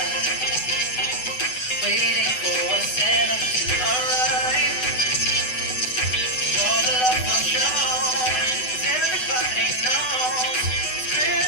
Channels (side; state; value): right; late; 8.0 ms